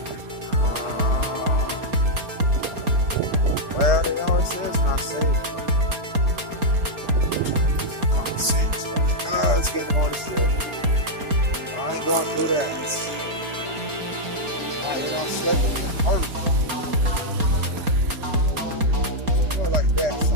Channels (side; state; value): left; late; 4.3 ms